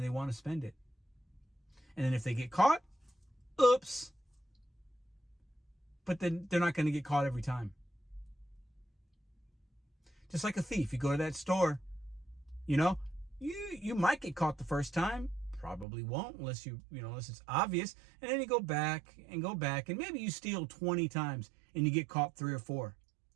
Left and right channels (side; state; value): left; drops out; at 15.9 s